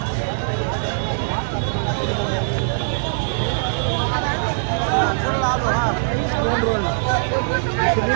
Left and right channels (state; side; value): silent; left; 65 dB below the other